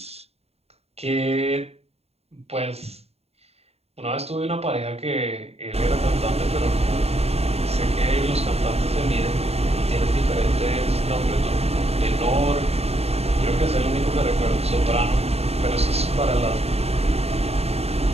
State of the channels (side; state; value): left; late; 0.30 ms